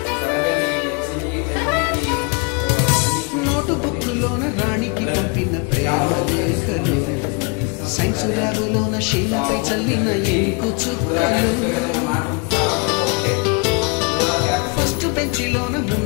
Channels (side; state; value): right; quieter; 31.1 dB